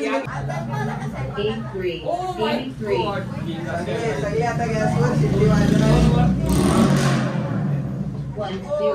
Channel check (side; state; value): both; identical; correlation 1.00